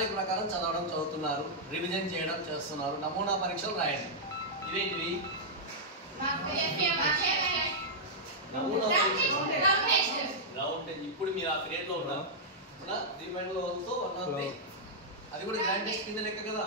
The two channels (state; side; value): normal; both; correlation -0.08